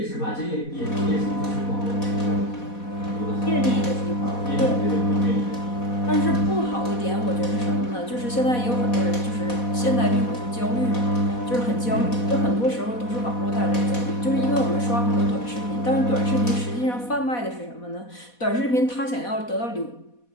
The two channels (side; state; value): right; late; 4.1 ms